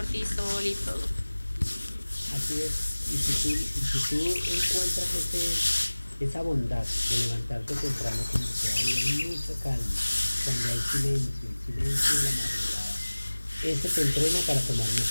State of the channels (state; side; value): inverted; both; correlation -1.00